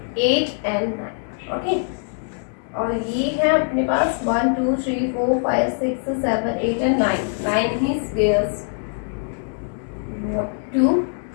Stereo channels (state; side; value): silent; right; digital silence